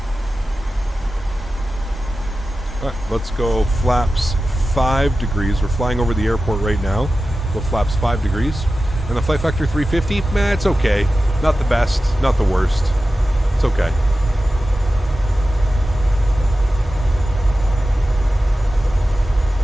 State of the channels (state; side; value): normal; both; correlation 0.94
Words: Alright, let's go flaps 5 degrees. We're flying over the airport right now. Go flaps 5 degrees. And the Flight Factor 350, man, it's okay. Not the best, not the worst. It's okay.